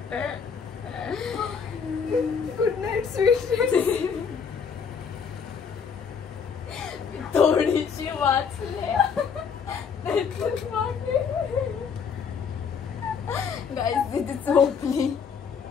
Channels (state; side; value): quieter; right; 6.4 dB